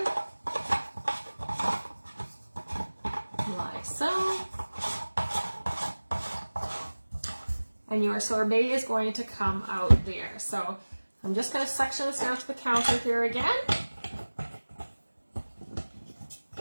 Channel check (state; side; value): inverted; both; correlation -1.00